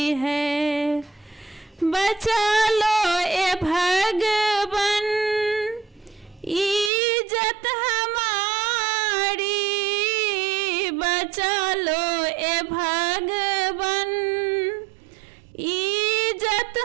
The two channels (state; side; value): drops out; left; at 6.9 s